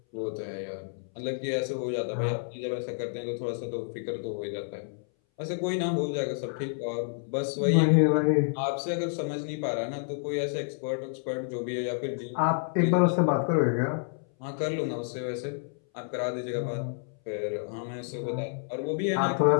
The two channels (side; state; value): right; silent; 58 dB below the other